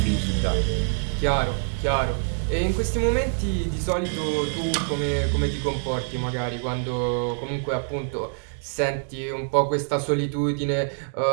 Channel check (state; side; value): silent; left; digital silence